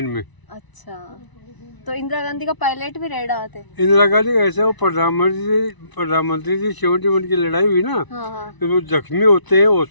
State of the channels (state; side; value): late; right; 1.0 ms